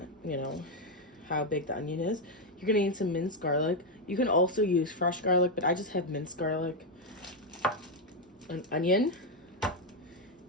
you know, how big the onion is. You're gonna need some minced garlic. You can also use fresh garlic, but I just have minced garlic, an onion,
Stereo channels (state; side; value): normal; both; correlation 0.04